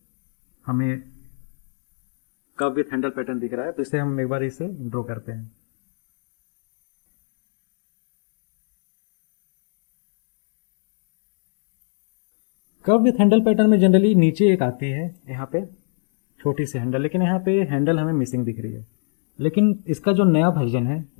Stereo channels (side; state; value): right; silent; digital silence